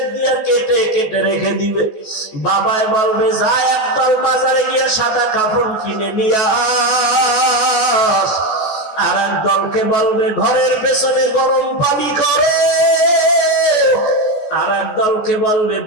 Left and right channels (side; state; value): right; late; 14 ms